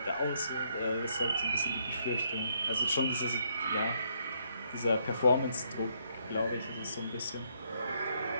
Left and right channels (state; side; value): inverted; both; correlation -0.72